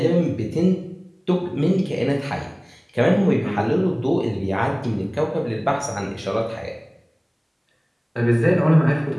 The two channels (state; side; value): identical; both; correlation 1.00